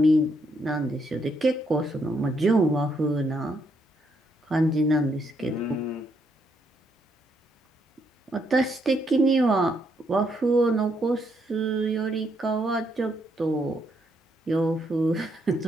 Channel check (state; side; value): normal; both; correlation 0.75